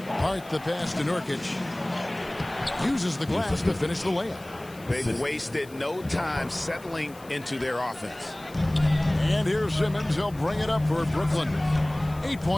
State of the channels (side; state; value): left; noise; hiss, 23 dB below the sound